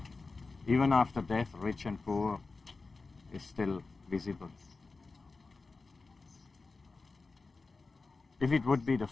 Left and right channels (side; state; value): right; quieter; 3.9 dB